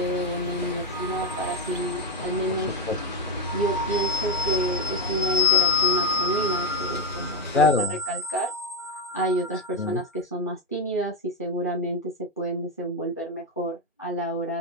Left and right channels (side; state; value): both; normal; correlation 0.08